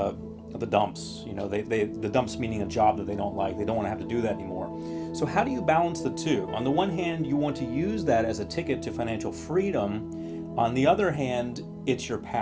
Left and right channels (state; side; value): identical; both; correlation 1.00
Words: dumps. The dumps meaning a job that they don't like. They don't want to have to do that anymore. So how do you balance the two? On the one hand, you want to use that as a ticket to financial freedom. On the other hand, it's your